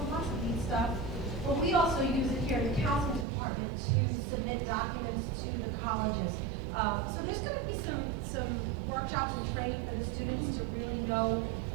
lots of neat stuff. But we also use it here in the counseling department to submit documents to the colleges. So there's going to be some workshops and training for the students to really know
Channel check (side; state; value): left; drops out; at 3.2 s